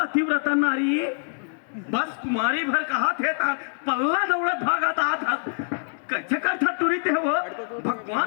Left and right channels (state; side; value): silent; right; 59 dB below the other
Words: नारी बस कुमारी भर कहा थे पल्ला दौड़त भागता था कैसे करता टूरी थे वो